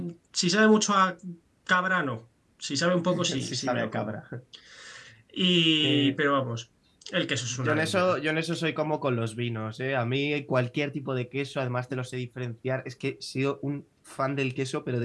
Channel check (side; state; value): both; identical; correlation 1.00